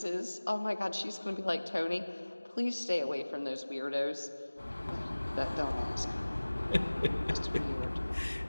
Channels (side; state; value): both; inverted; correlation -1.00